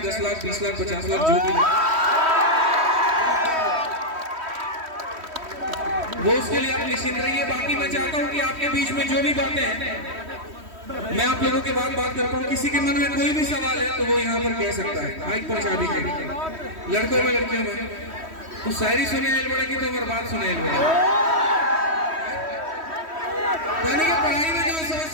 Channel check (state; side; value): late; left; 3.1 ms